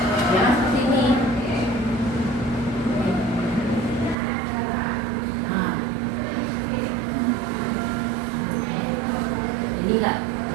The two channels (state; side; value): drops out; left; at 4.2 s